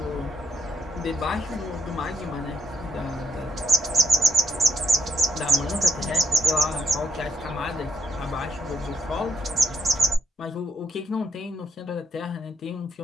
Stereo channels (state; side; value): normal; both; correlation 0.74